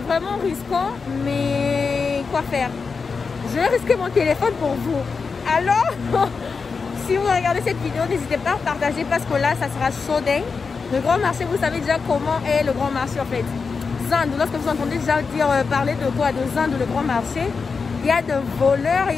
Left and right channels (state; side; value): quieter; right; 5.0 dB